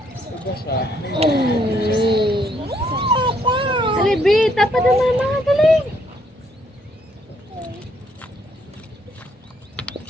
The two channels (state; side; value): normal; both; correlation 0.70